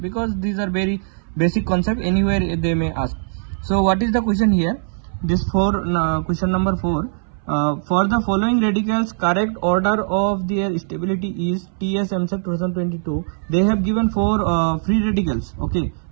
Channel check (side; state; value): left; silent; 61 dB below the other